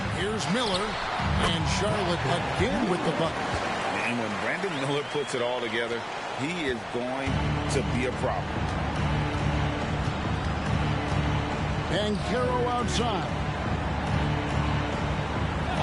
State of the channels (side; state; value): both; identical; correlation 1.00